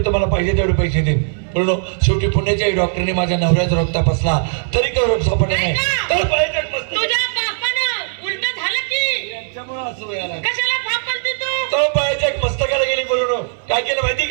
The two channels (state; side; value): silent; left; 64 dB below the other